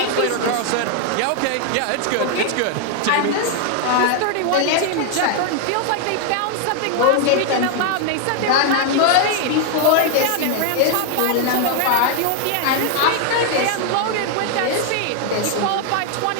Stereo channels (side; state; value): both; different; correlation 0.00